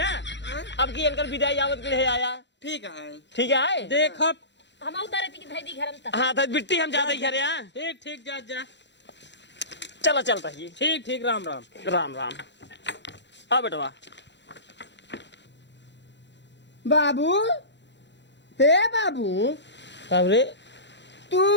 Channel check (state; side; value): late; right; 0.52 ms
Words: अब की इनकर विदाई आवत के लिए आया ठीक है। ठीक है देख हम उतारे थी कि धैदी घर में तक हाँ तो बिट्टी हम जाते ही घरे हाँ ठीक ठीक जा जा चला चलता ही ठीक ठीक राम राम राम राम आ बेटवा बाबू, हे बाबू, कब रे